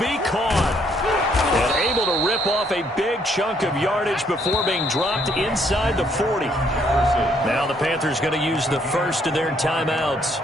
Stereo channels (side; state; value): both; normal; correlation 0.68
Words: caught. And able to rip off a big chunk of yardage before being dropped inside the 40. Now the Panthers going to use the first of their timeouts.